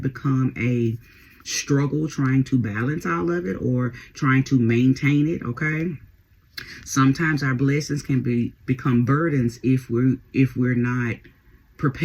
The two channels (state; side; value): identical; both; correlation 1.00